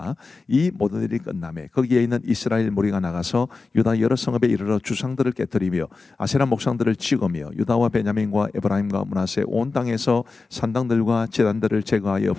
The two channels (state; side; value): quieter; right; 4.0 dB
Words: 이 모든 일이 끝남에 거기에 있는 이스라엘 무리가 나가서 유다 여러 성읍에 이르러 주상들을 깨뜨리며 아세라 목상들을 찍으며 유다와 베냐민과 에브라임과 므낫세 온 땅에서 산당들과 제단들을 제거하여